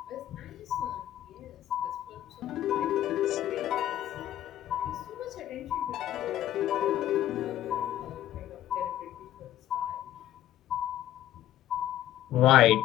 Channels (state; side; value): quieter; right; 12.7 dB